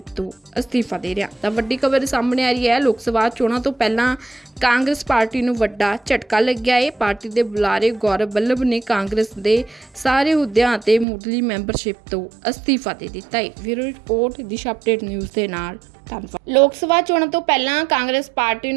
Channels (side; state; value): left; drops out; at 11.1 s